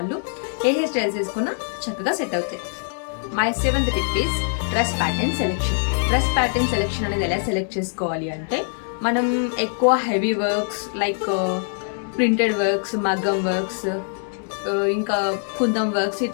ఏ హెయిర్ స్టైల్స్ వేసుకున్నా చక్కగా సెట్ అవుతాయి. My seventh tip is dress pattern selection. Dress pattern selection అనేది ఎలా సెలెక్ట్ చేసుకోవాలి అంటే మనం ఎక్కువ heavy works like printed works, మగ్గం వర్క్స్, ఇంకా కుందం వర్క్స్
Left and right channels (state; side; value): silent; right; digital silence